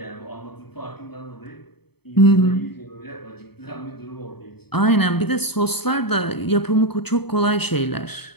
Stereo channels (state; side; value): late; right; 0.97 ms